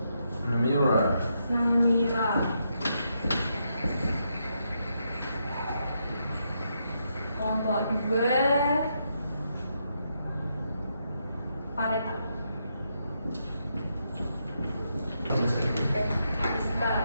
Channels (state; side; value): inverted; both; correlation -0.80